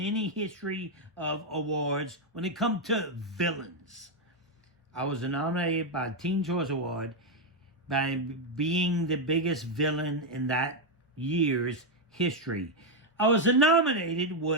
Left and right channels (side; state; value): both; normal; correlation 0.03